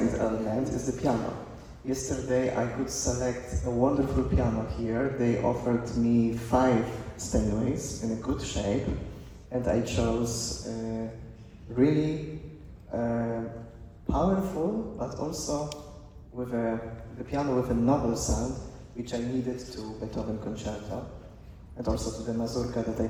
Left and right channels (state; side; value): identical; both; correlation 1.00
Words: element is the piano. Yesterday I could select a wonderful piano here. They offered me 5 Steinways in a good shape, and I chose really powerful, but also with the piano with a noble sound, which I needed to Beethoven concerto, and also to the mazurka that I